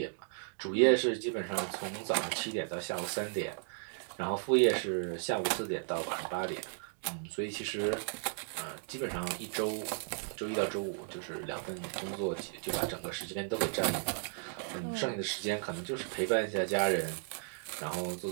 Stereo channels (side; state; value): left; silent; 54 dB below the other